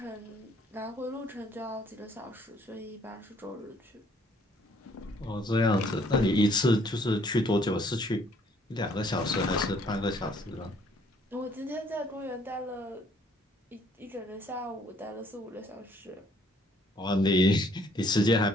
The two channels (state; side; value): normal; both; correlation 0.62